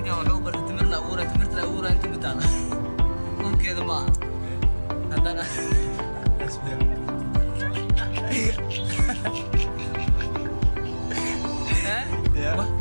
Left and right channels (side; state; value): both; inverted; correlation -1.00